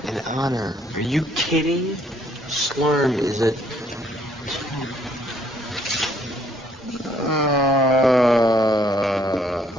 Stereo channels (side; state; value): both; normal; correlation 0.65